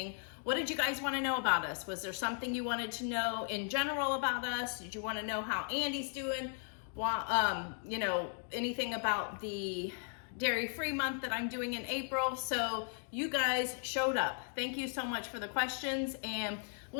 What did you guys want to know about us? Was there something you wanted to know in general about us? Did you want to know how Andy's doing? You know, anything about the dairy-free month that I'm doing in April? So you guys showed up. Thank you so much for the questions, and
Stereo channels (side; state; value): right; silent; 53 dB below the other